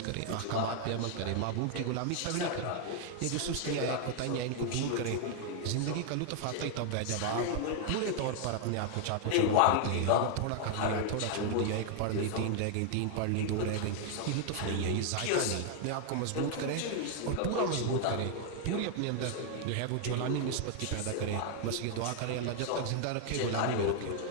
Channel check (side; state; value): both; different; correlation 0.00